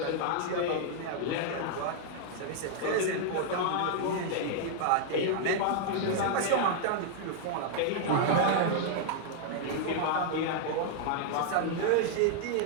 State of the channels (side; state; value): both; different; correlation -0.01